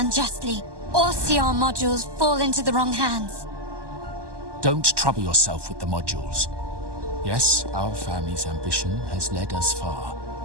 or see our modules fall into the wrong hands. Don't trouble yourself with the modules. Yes, our family's ambition has led us far,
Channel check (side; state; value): left; late; 1.2 ms